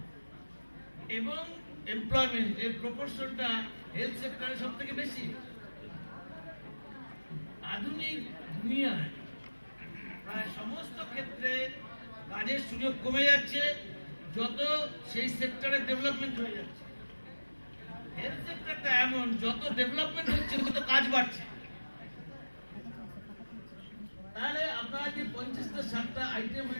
এবং এমপ্লয়মেন্ট এর প্রপোর্শনটা হেলথ সেক্টরে সব থেকে বেশি। আধুনিক দুনিয়ায় প্রায় সমস্ত ক্ষেত্রে কাজের সুযোগ কমে যাচ্ছে যত সেই সেক্টরে ডেভেলপমেন্ট হয়ে যাচ্ছে। হেলথ সেক্টরটা এমন, যত ডেভেলপমেন্ট হচ্ছে তত কাজ বাড়ছে। তাহলে আপনারা যে 50টা 60টা আইটেম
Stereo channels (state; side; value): inverted; both; correlation -1.00